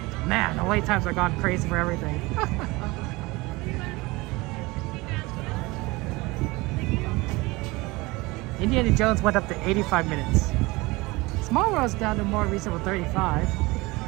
Man, the wait times are gone crazy for everything. Indiana Jones went up to 85 minutes. Small World's down to more reasonable 35.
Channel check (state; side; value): quieter; left; 22.6 dB